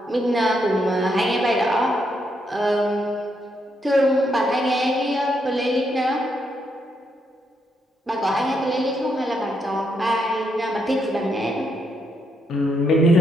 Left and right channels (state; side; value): normal; both; correlation 0.78